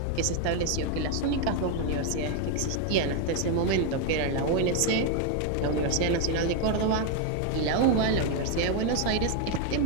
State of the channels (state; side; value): different; both; correlation 0.01